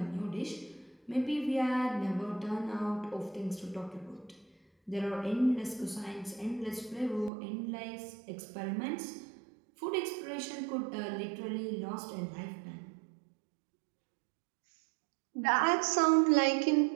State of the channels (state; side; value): drops out; left; at 7.3 s